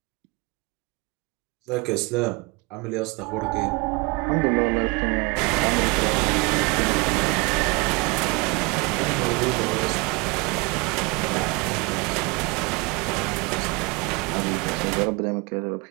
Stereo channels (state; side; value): quieter; left; 27.4 dB